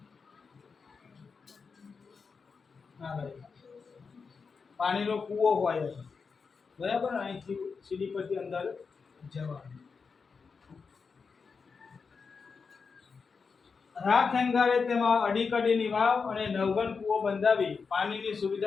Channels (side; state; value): right; quieter; 5.2 dB